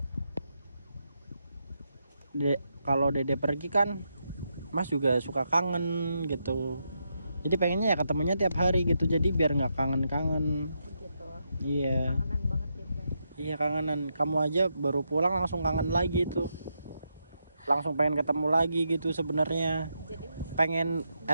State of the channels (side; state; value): both; inverted; correlation -0.82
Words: Dede pergi kan Mas juga suka kangen gitu. Jadi pengennya ya ketemunya tiap hari gitu, jadi biar nggak kangen-kangen. Gitu. Iya. Kangenan banget ya kan? Iya, kangenan. Kamu aja baru pulang langsung kangen lagi tuh. Langsung pengen ketemu lagi gitu sebenarnya. Jadi Pengen